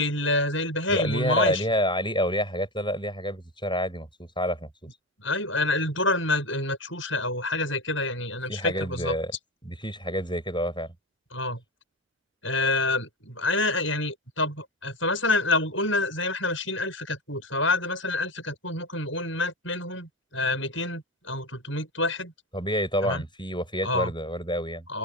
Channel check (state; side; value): normal; both; correlation 0.20